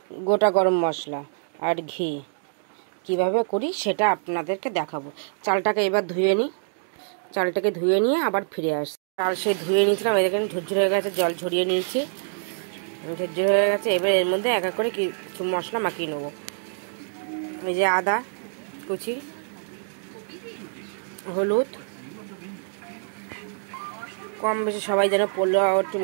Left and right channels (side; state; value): left; silent; digital silence